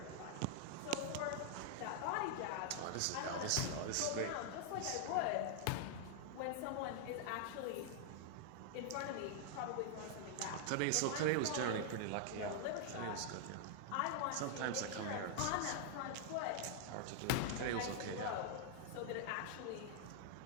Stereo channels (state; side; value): different; both; correlation -0.01